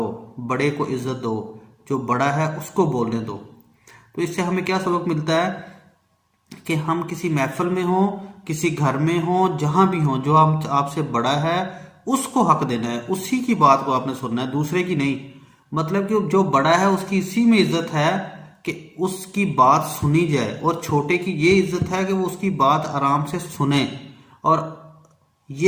بڑے کو عزت دو، جو بڑا ہے اس کو بولنے دو۔ تو اس سے ہمیں کیا سبق ملتا ہے کہ ہم کسی محفل میں ہوں، کسی گھر میں ہوں، جہاں بھی ہوں، جو آپ سے بڑا ہے اس کو حق دینا ہے، اسی کی بات کو آپ نے سننا ہے، دوسرے کی نہیں۔ مطلب کہ جو بڑا ہے اس کی اسی میں عزت ہے کہ اس کی بات سنی جائے، اور چھوٹے کی یہ عزت ہے کہ وہ اس کی بات آرام سے سنیں، اور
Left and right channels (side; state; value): both; identical; correlation 1.00